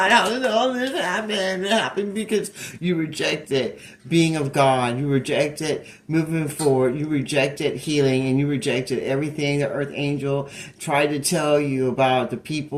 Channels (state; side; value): identical; both; correlation 1.00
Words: how did all this happen? It happened because you rejected being of God. You rejected moving forward. You rejected healing, and you rejected everything the earth angel tried to tell you about the